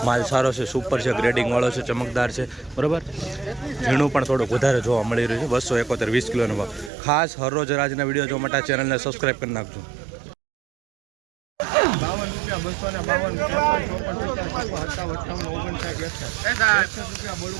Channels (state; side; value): drops out; left; at 6.9 s